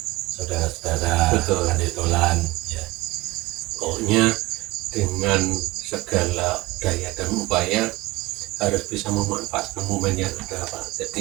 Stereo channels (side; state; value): left; quieter; 20.2 dB